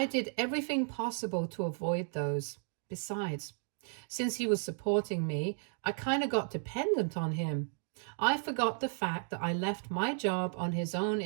did everything possible to avoid those. Besides, since he was supporting me, I kind of got dependent on him. I forgot the fact that I left my job on his own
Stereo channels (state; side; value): silent; left; digital silence